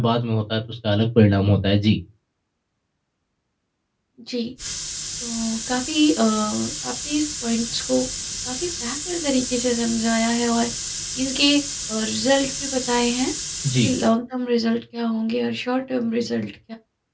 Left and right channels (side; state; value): both; identical; correlation 1.00